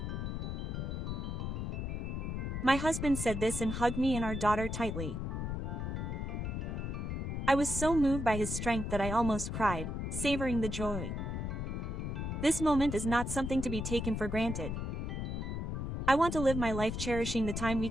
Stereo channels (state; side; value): noise; left; rumble, 3 dB below the sound